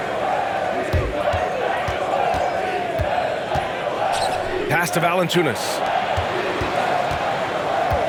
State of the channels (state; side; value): identical; both; correlation 1.00